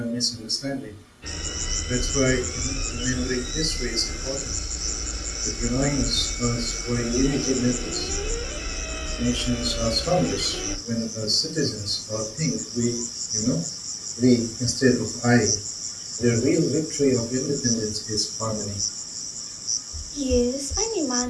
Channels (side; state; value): both; identical; correlation 1.00